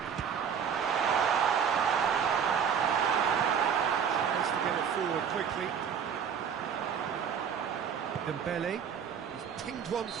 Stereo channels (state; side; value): quieter; left; 7.5 dB